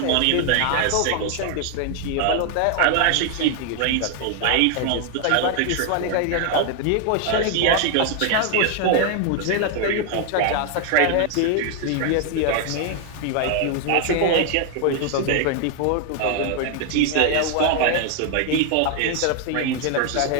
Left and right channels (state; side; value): different; both; correlation 0.00